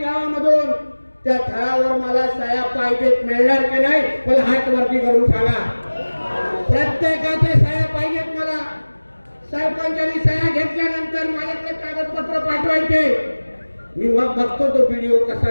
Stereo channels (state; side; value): inverted; both; correlation -1.00